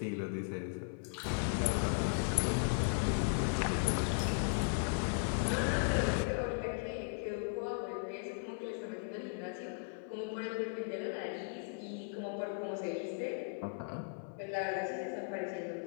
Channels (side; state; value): right; silent; 53 dB below the other